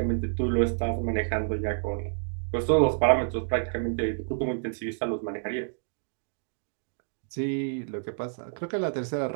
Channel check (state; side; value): silent; left; digital silence